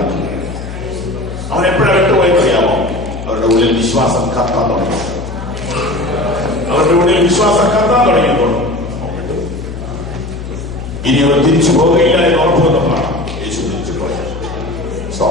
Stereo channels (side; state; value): left; noise; hum, 9 dB below the sound